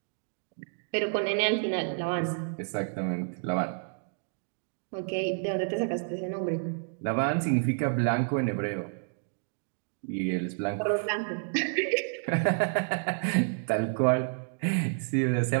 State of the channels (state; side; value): silent; left; digital silence